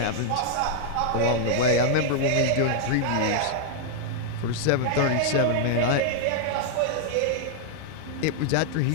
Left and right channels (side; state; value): both; different; correlation -0.01